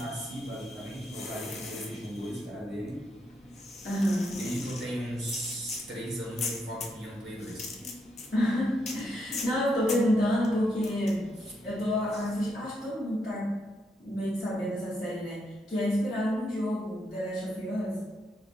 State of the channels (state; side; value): normal; both; correlation 0.79